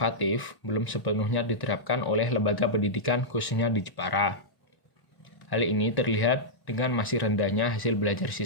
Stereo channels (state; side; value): late; right; 1.1 ms